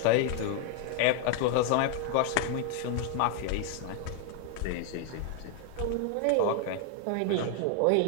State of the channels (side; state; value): both; different; correlation 0.00